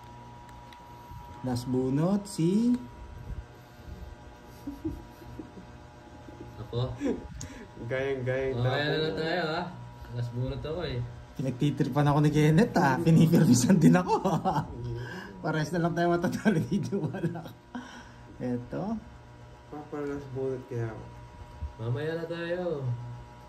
Last bunot, si... Ako. Gayang-gayang Kaya na lang tayo, ha? Last bunot ako eh. Pinagtitripan ako ni Kenneth Pinipirmisan din ako. Pares na lang tayo matatalo dito. Wala. Eto. Papalas bunot kaya ako. Mamaya na tayo.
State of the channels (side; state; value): both; identical; correlation 1.00